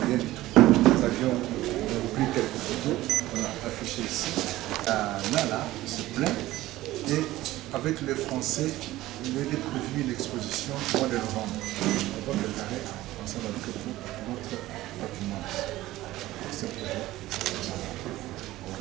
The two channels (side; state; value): left; quieter; 16.5 dB